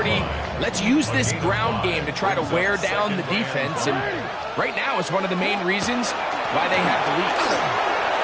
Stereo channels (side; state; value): both; identical; correlation 1.00